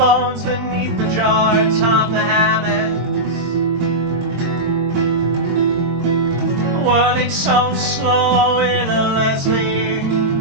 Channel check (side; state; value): left; late; 22 ms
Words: beneath the jar atop the hammocks. Whirling so slow in a Leslie